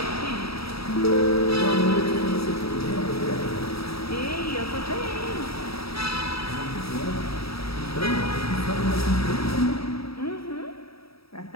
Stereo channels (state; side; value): late; right; 0.77 ms